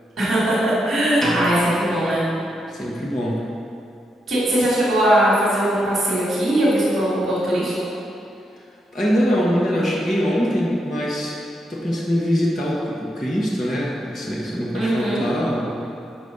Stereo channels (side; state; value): both; normal; correlation 0.82